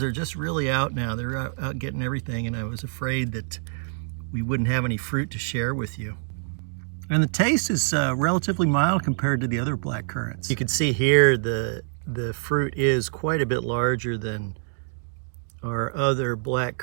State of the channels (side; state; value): left; silent; digital silence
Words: are just really out now. They're out getting everything, and I was afraid that we wouldn't have any fruit to share with you. And the taste is relatively mild compared to the other black currants. You can see here the fruit is quite a bit larger than our other black